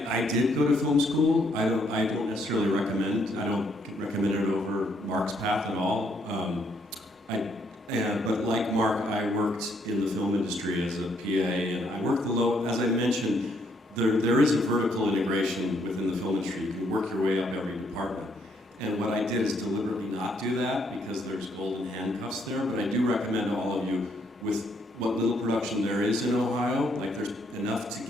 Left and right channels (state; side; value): normal; both; correlation 0.71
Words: did go to film school. I don't necessarily recommend. I don't recommend it over Mark's path at all. But like Mark, I worked in the film industry as a PA, and I worked as I mentioned, there is a vertical integration within the film industry. You can work your way up every department. And what I did is deliberately not do that because there's golden handcuffs there, but I do recommend to all of you, with what little production there is in Ohio, like there's enough to